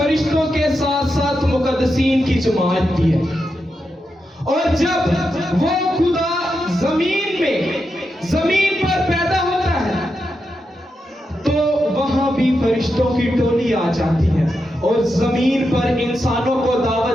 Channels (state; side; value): normal; both; correlation 0.86